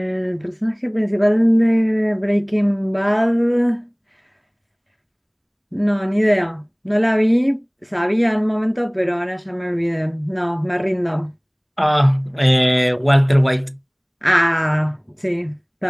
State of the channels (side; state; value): both; identical; correlation 1.00